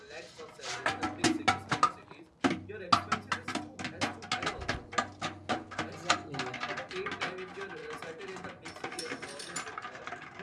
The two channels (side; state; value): both; identical; correlation 1.00